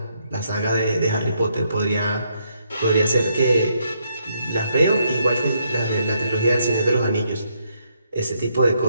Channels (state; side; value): inverted; both; correlation -0.74